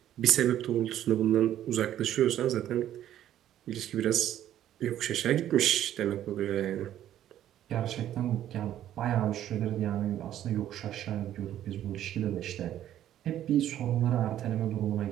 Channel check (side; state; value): left; quieter; 11.8 dB